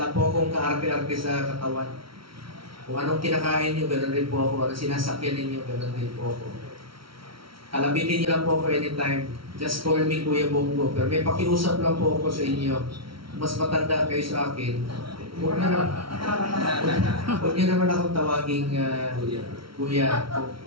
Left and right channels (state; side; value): late; left; 0.74 ms